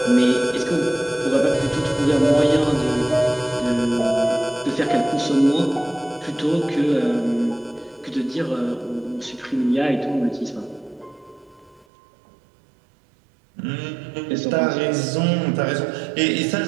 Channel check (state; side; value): drops out; left; at 11.9 s